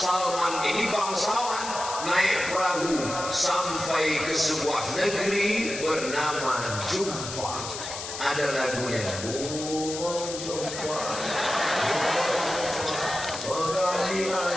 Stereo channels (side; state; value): left; noise; hiss, 8 dB below the sound